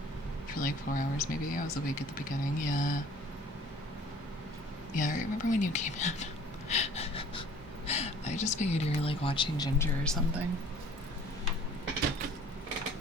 For like 4 hours maybe. I was awake at the beginning, yeah. Yeah, I remember when you came in. I just figured you were like watching Ginger or something.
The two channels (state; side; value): normal; both; correlation 0.51